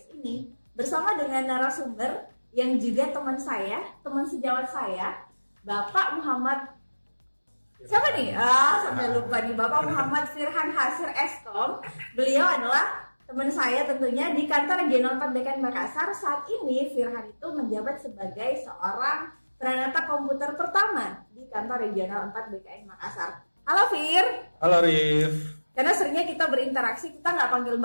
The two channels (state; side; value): inverted; both; correlation -1.00